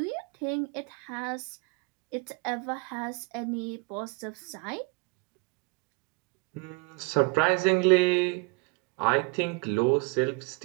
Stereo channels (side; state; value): left; quieter; 31.0 dB